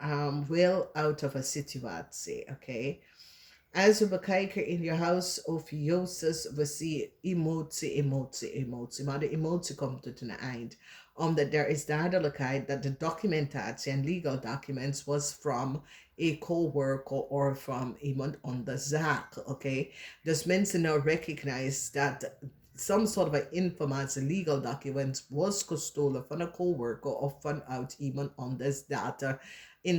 wil out of a situatie, oké? Okay? Als we bekijken in je huis OPHIUCHUS, we zien emotie. Maar de emotie komt tot een eind. Omdat er is duidelijkheid dat de documentatie en legal documents was from a co-worker or from iemand on de zaak, oké? Okay? Dus mensen nou recognize dat some sort of informatie, legal documents, was gestolen van een coworker of vanuit iemand anders data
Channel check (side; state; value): both; identical; correlation 1.00